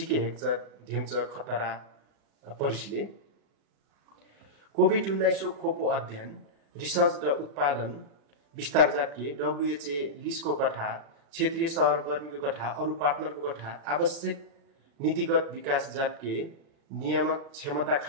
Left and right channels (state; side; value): late; left; 36 ms